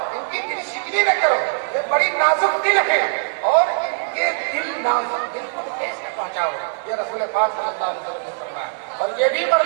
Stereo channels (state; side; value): silent; left; 65 dB below the other